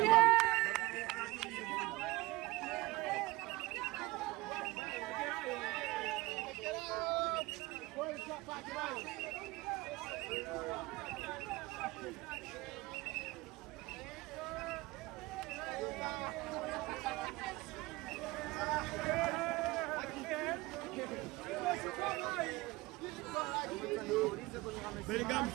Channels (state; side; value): quieter; left; 21.4 dB